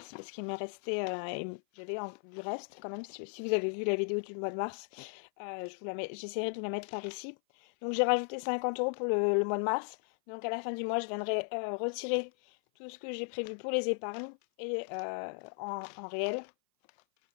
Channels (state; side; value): silent; right; 54 dB below the other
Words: parce qu'il m'est resté, j'avais du reste quand même. Si vous avez vu la vidéo du mois de mars, j'essaierai de vous la mettre par ici. Donc j'ai rajouté 50 euros pour le mois de mars. Donc à la fin du mois, je viendrai retirer tout ce que j'ai prévu pour les épargnes et en réel.